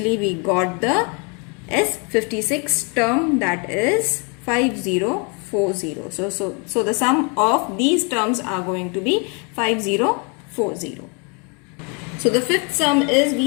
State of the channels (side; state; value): right; quieter; 34.3 dB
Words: we got the S56 term, that is 5040. So the sum of these terms are going to be 5040. So the fifth sum is